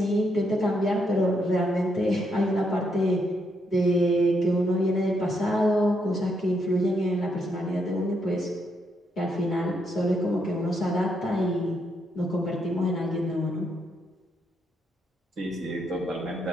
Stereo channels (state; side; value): normal; both; correlation 0.77